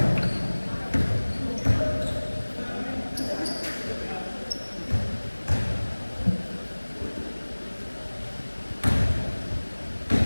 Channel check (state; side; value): inverted; both; correlation -1.00